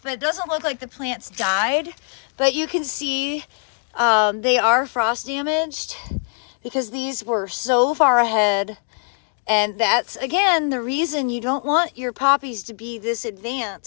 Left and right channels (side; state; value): right; silent; 57 dB below the other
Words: but it doesn't look like the plants died. But you can see they are frost damaged, because these were so far ahead And that's, again, the reason you don't want your poppies to be this